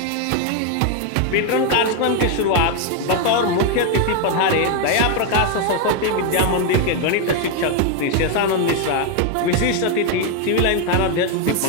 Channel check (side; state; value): both; different; correlation 0.01